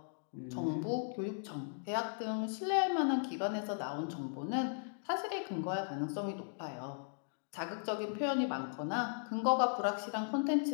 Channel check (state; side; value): silent; right; digital silence